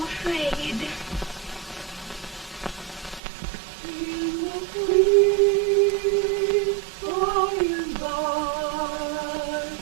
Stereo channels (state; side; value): drops out; left; at 3.2 s